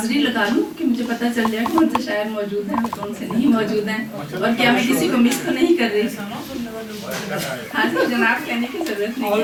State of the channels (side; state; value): both; identical; correlation 1.00